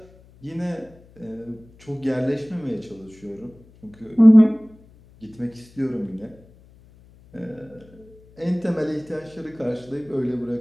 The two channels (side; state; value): left; noise; hum, 26 dB below the sound